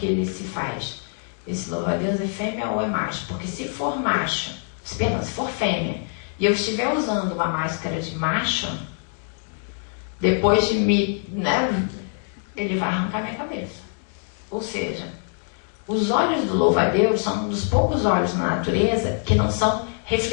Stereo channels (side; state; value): right; silent; 55 dB below the other